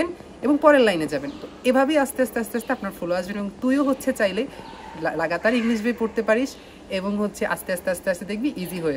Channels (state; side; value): identical; both; correlation 1.00